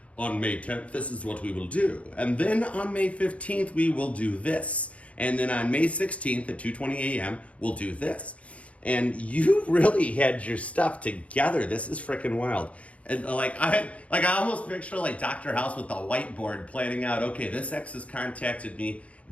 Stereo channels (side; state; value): right; late; 0.064 ms